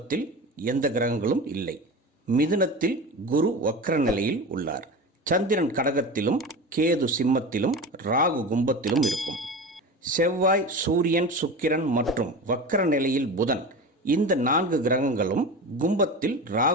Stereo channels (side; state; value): both; normal; correlation 0.29